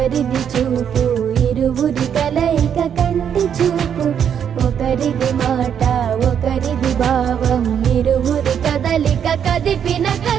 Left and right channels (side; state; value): left; quieter; 8.4 dB